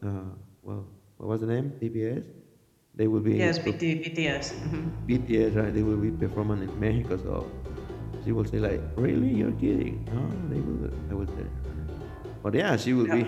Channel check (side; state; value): both; identical; correlation 1.00